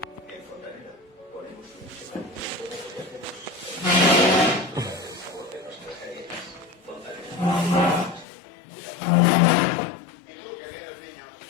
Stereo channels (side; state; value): right; drops out; at 8.2 s